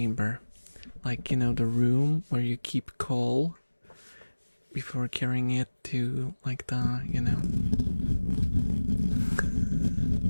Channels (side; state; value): both; inverted; correlation -1.00